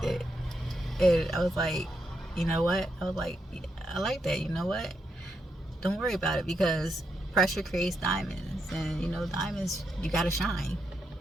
it. And I was like, you know what? I was like, I like that. You know what? Don't worry about it, because pressure creates diamonds. And, you know, diamonds, you got to shine.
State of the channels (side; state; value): both; normal; correlation 0.82